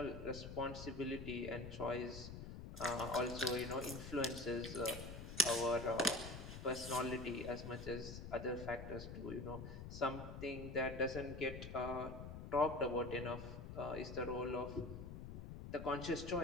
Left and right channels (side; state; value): left; noise; rumble, 9 dB below the sound